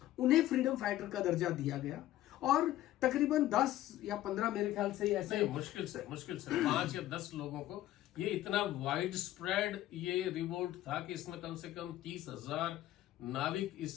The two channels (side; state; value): right; quieter; 14.3 dB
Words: उन्हें फ्रीडम फाइटर का दर्जा दिया गया। और तकरीबन 10 या 15 मेरे ख्याल से ऐसे मुश्किल से 5 या 10 लोगों को, ये इतना वाइड स्प्रेड ये रिवोल्ट था कि इसमें कम से कम 30,000